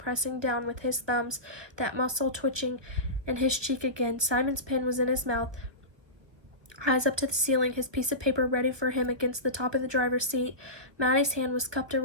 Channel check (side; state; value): left; late; 1.4 ms